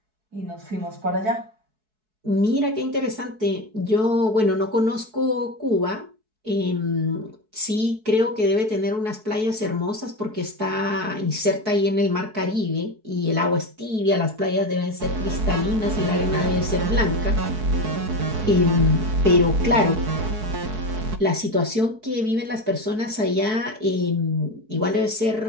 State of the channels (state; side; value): late; left; 4.6 ms